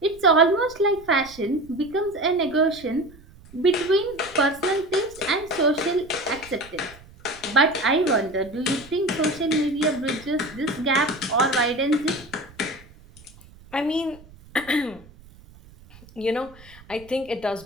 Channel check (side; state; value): right; noise; rumble, 23 dB below the sound